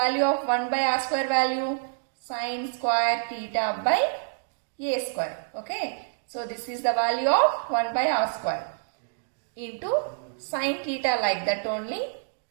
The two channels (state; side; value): silent; left; digital silence